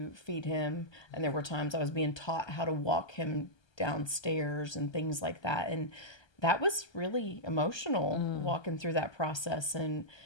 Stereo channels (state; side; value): late; right; 1.3 ms